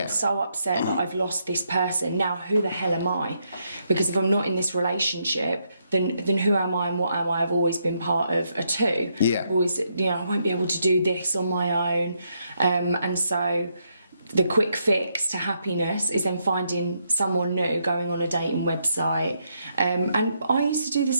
so upset that I've lost this person. Now, who the hell am I? Because if I'm not in this relationship, than who am I and what am I. I've always been part of a two. Yeah. I've always, I won't be able to do this on my own. And so the quick fix to happiness is then finding someone new, going on a dating website. And I used to do the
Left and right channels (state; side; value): inverted; both; correlation -0.77